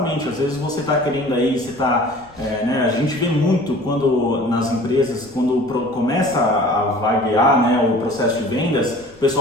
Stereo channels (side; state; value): left; noise; rumble, 28 dB below the sound